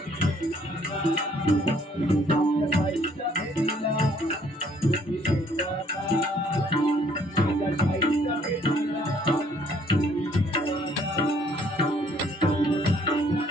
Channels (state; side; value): normal; both; correlation 0.63